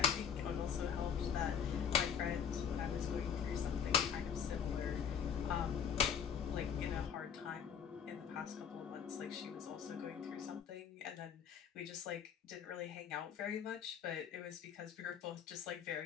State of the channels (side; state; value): right; quieter; 7.8 dB